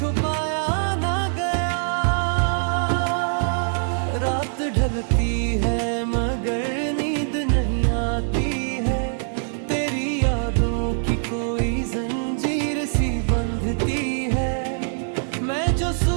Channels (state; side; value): silent; left; digital silence